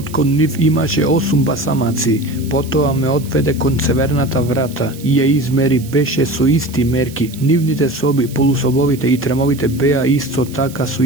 кон нив имаше 8 басамаци. Потоа ме одведе кон северната врата и ја измери, беше со исти мерки. Нивните соби, полусобовите и тремовите беа исто така со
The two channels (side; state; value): right; noise; hiss, 19 dB below the sound